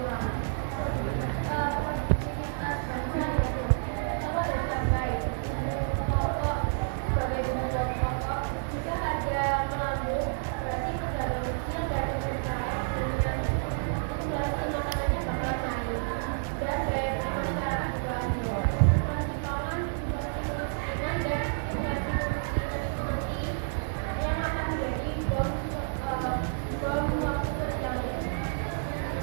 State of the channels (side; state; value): left; silent; digital silence